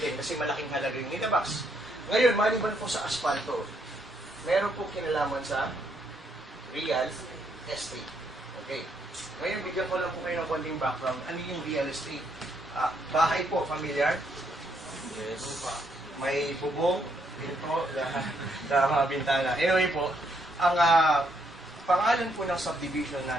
kasi malaking halaga yung nilabas. Ngayon, maliban po sa asfalto, meron po kinalaman sa real estate. Okay. Ngayon, bigyan ko lang po kayo ng konting background. Ano yung real estate? Bahay po, familiar? Yes. May bubong, pinto, na mga bintana. Anyway po, ang pangalan po ng subdivision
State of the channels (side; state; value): both; normal; correlation 0.74